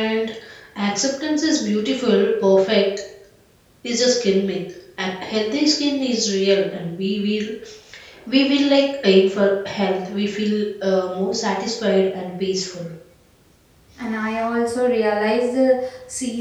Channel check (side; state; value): both; identical; correlation 1.00